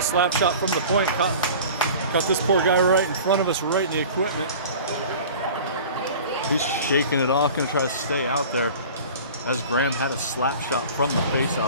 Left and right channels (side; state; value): both; inverted; correlation -0.40